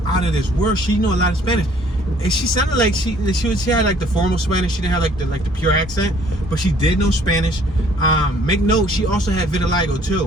out of this world. She knew a lot of Spanish. And she sounded like she had like the formal Spanish. She didn't have like the pure accent, but she did know Spanish. Make note, she also had vitiligo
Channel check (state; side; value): normal; both; correlation 0.59